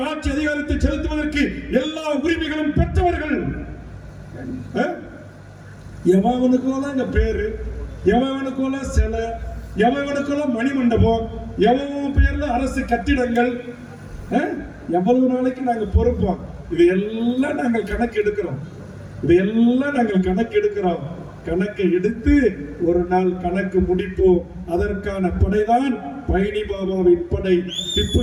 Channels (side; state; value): both; identical; correlation 1.00